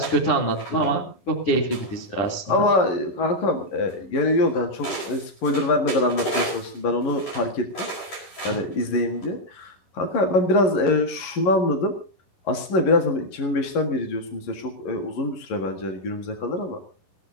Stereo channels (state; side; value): late; right; 10 ms